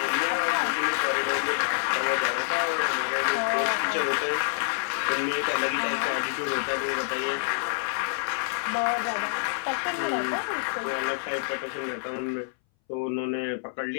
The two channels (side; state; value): right; silent; 60 dB below the other